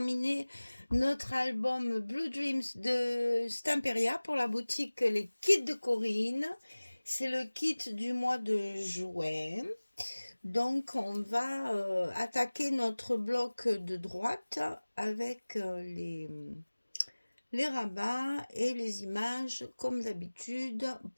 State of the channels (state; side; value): inverted; both; correlation -1.00